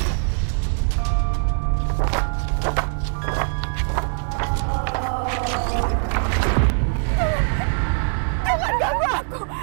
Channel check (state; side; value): silent; left; 64 dB below the other